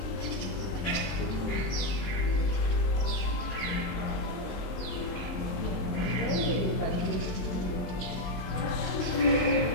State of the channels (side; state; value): right; late; 22 ms